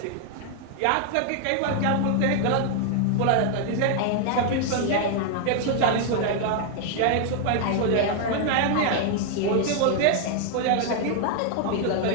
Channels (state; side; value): different; both; correlation 0.00